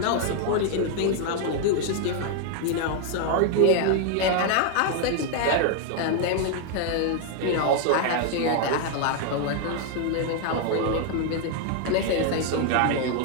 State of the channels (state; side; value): different; both; correlation 0.00